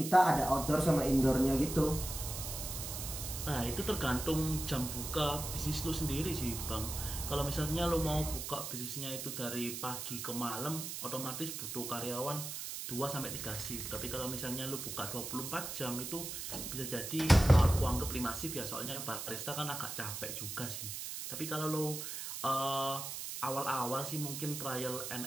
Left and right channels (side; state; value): right; noise; hiss, 6 dB below the sound